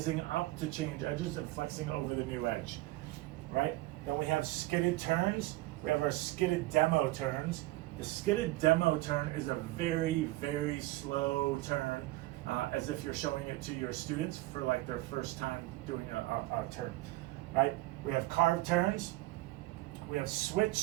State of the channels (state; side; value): quieter; left; 18.7 dB